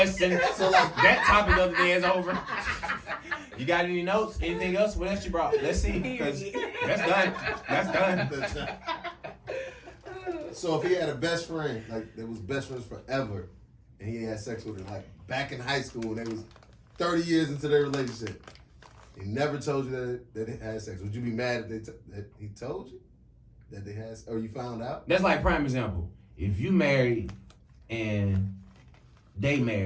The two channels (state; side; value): identical; both; correlation 1.00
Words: So like, That topic of the day is over. You got any notes? Anything else? What else you brought? Let's see. Because that's done. That's done. so if he had a best friend, like they was best friends forever, and he had sex with her, like back in high school, and they was 30 years into their relationship, he never told you that they had sex. Would you be mad if that he told you that they had, or you found out? That's like prime example. If you married and they